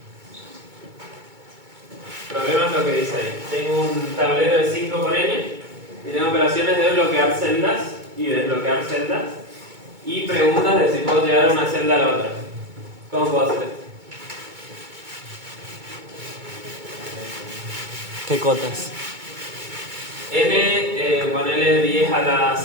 El problema es lo que dice ahí. Tengo un tablero de 5 por n y tengo operaciones de bloquear celdas y desbloquear celdas y preguntas de si puedo llegar de una celda a la otra. ¿Cómo puedo hacer esto? ¿Qué cotas? N, ponele 10 a la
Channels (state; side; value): late; left; 2.2 ms